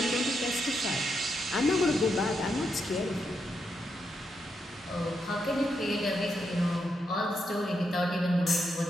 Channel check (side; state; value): both; normal; correlation 0.82